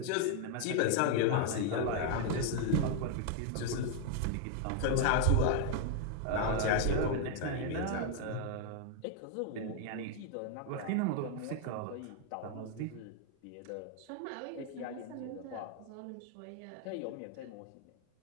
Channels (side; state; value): both; different; correlation 0.00